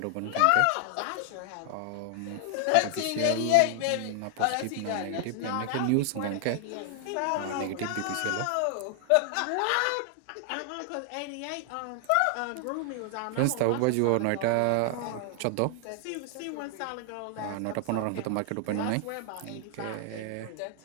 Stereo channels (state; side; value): different; both; correlation 0.00